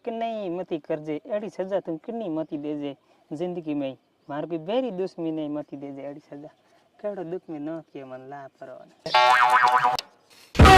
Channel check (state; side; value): identical; both; correlation 1.00